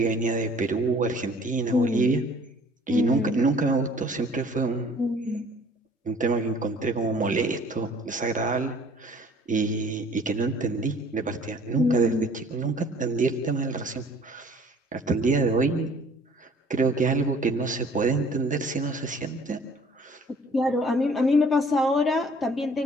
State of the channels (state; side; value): normal; both; correlation 0.53